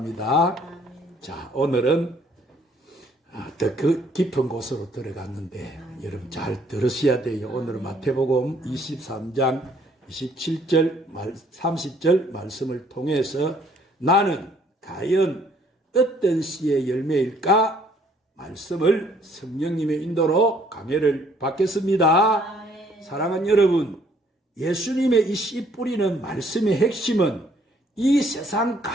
자, 오늘은 더 깊은 곳으로 들어갔는데 여러분 잘 들으셔야 돼요. 오늘은 마태복음 23장 27절 30절 말씀을 통해서 나는 과연 어떤 씨의 열매일까 말씀을 성령님의 인도로 강해를 받겠습니다. 사랑하는 여러분, 예수님의 이 씨 뿌리는 말씀의 핵심은 이 세상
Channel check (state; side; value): normal; both; correlation 0.63